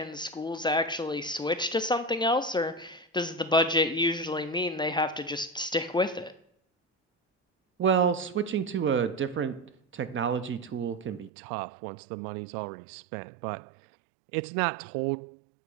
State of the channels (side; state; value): left; drops out; at 11.3 s